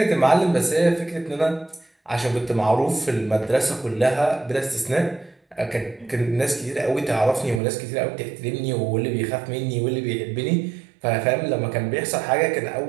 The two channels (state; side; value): drops out; left; at 7.6 s